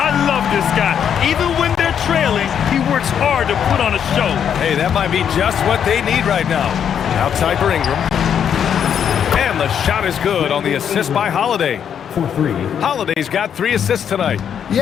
love this guy. Even when they're trailing, he works hard to put on a show. Hey, that might be just what they need right now. Outside for Ingram. And the shot is good on the assist by Holiday. Holiday's got 3 assists tonight.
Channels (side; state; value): right; quieter; 8.4 dB